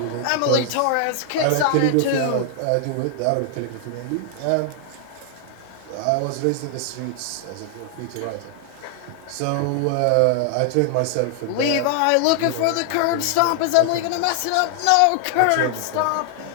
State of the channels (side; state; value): both; different; correlation 0.00